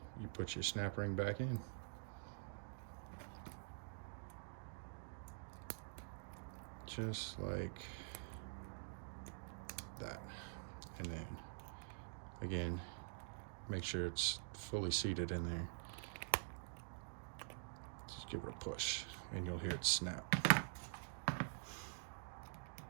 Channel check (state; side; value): silent; left; digital silence